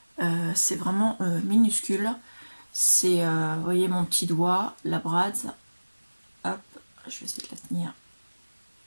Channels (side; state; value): both; inverted; correlation -1.00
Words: C'est vraiment minuscule. C'est, vous voyez, mon petit doigt, la brad. Hop, je vais essayer de la tenir.